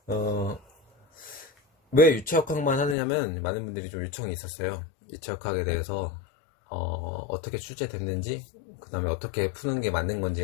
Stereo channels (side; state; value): right; drops out; at 3.0 s